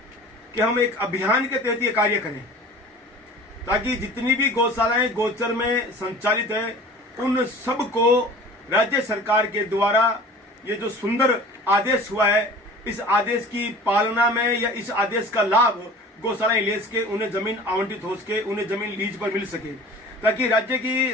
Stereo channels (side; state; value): both; normal; correlation 0.43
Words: कि हम एक अभियान के तहत ये कार्य करें ताकि जितनी भी गौशालाएं गोचर में संचालित है उन सबको राज्य सरकार के द्वारा ये जो सुंदर आदेश हुआ है इस आदेश की पालना में या इस आदेश का लाभ गौशालाएं ले सके, उन्हें जमीन आवंटित हो सके, उन्हें जमीन लीज पर मिल सके, ताकि